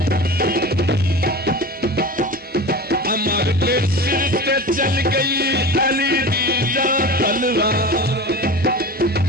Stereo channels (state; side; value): normal; both; correlation 0.32